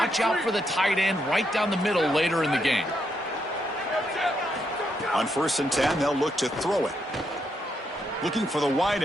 out for the tight end right down the middle later in the game. On 1st and 10, they'll look to throw it. Looking for the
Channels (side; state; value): both; normal; correlation 0.79